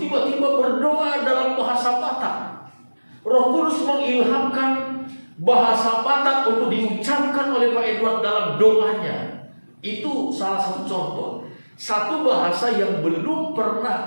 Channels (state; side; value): inverted; both; correlation -1.00